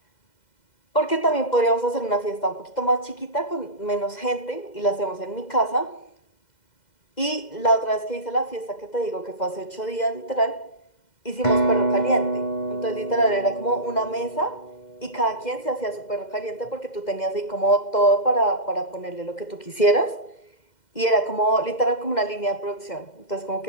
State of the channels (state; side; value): late; right; 2.0 ms